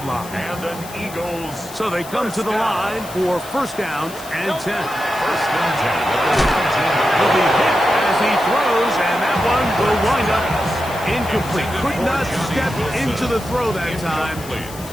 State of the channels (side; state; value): left; noise; hiss, 16 dB below the sound